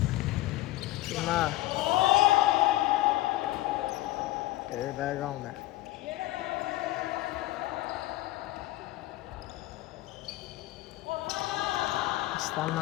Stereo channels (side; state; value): right; quieter; 16.9 dB